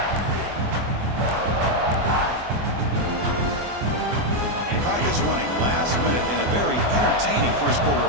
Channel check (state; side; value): late; left; 24 ms